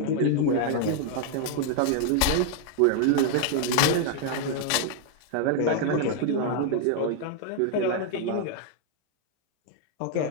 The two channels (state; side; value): different; both; correlation 0.00